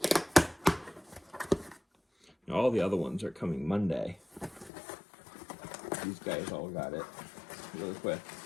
Now, all the other ones are coming Monday. These guys all got it really quick.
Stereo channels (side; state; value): right; drops out; at 4.7 s